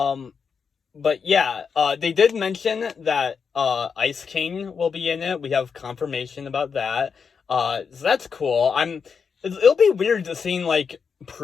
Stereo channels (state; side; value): quieter; right; 6.0 dB